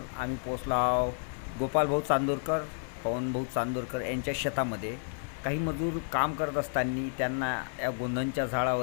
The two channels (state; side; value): silent; right; 57 dB below the other